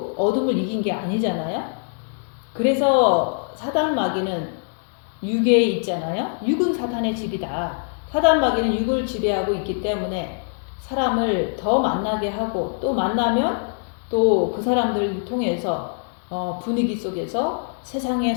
어둠을 이긴 게 아니잖아요. 그래서 사단 마귀는 육에 있잖아요. 육은 사탄의 집이다. 사단 마귀는 육을 지배하고 있기 때문에 사람을 더 만나게 하고, 또 만나면 또 그 사람들을 통해서 분위기 속에서 세상에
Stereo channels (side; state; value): right; silent; 63 dB below the other